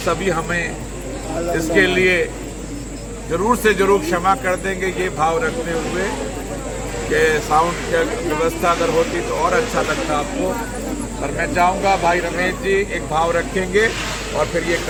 सभी हमें इसके लिए जरूर से जरूर क्षमा कर देंगे, ये भाव रखते हुए कि साउंड की व्यवस्था अगर होती तो और अच्छा लगता आपको। पर मैं चाहूँगा भाई रमेश जी एक भाव रखेंगे और फिर ये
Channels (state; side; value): identical; both; correlation 1.00